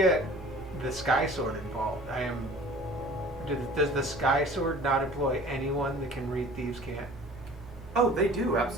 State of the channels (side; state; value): both; normal; correlation 0.46